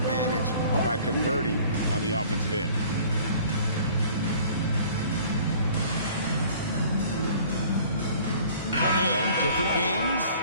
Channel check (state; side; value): inverted; both; correlation -0.51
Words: by converting on the offensive end. And different games,